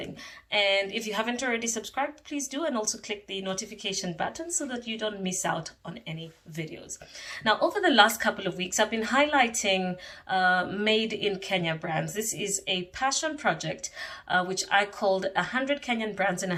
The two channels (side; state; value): both; identical; correlation 1.00